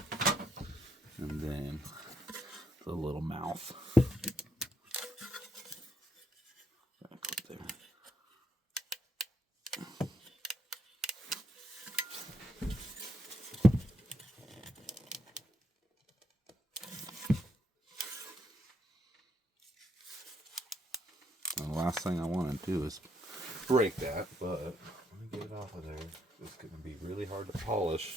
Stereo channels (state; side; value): normal; both; correlation 0.77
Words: And then the little mouth. Back up there. The last thing I want to do is break that, but let me get it off of there. It's going to be really hard to